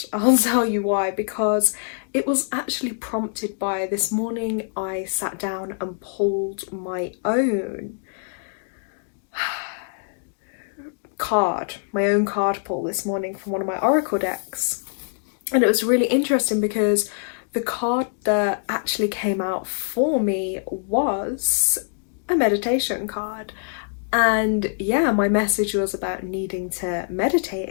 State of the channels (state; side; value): silent; right; digital silence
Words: tell you why, because it was actually prompted by this morning I sat down and pulled my own card pull this morning from one of my oracle decks, and it was really interesting because the card that actually came out for me was a meditation card. And yeah, my message was about needing to meditate